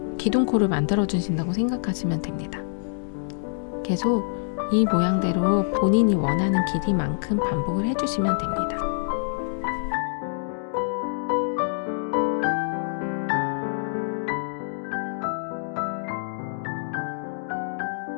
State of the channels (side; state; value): right; silent; digital silence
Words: 기둥코를 만들어 주신다고 생각하시면 됩니다. 계속 이 모양대로 본인이 원하는 길이만큼 반복을 해주시면 됩니다.